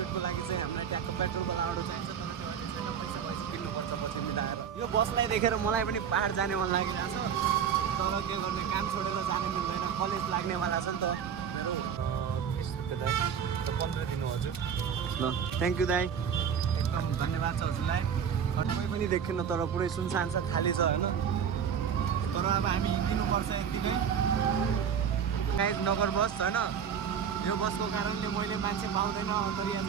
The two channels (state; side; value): quieter; left; 7.7 dB